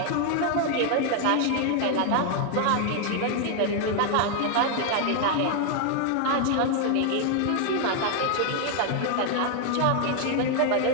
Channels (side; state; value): both; different; correlation 0.00